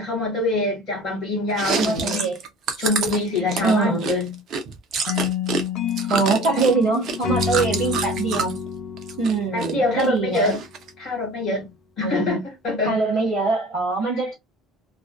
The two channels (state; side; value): normal; both; correlation 0.42